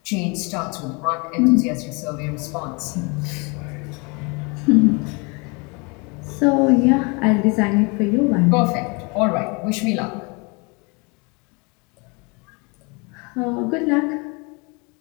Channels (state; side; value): quieter; right; 30.3 dB